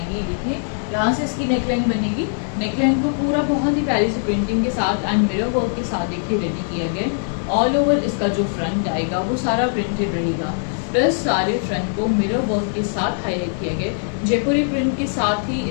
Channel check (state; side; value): silent; right; digital silence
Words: ये देखिए यहाँ से इसकी नेकलाइन बनेगी। नेकलाइन को पूरा बहुत ही प्यारी सी प्रिंटिंग के साथ एंड मिरर वर्क के साथ देखिए रेडी किया गया। ऑल ओवर इसका जो फ्रंट आएगा वो सारा प्रिंटेड रहेगा, प्लस सारे फ्रंट को मिरर वर्क के साथ हाईलाइट किया गया। जयपुरी प्रिंट के साथ ही